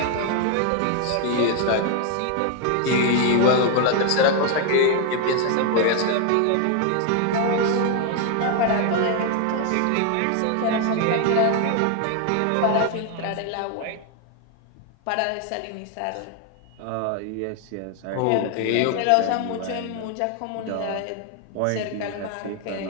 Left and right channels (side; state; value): both; different; correlation 0.00